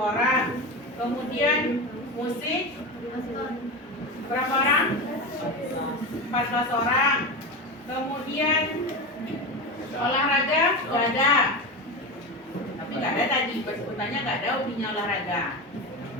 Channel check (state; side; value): normal; both; correlation 0.21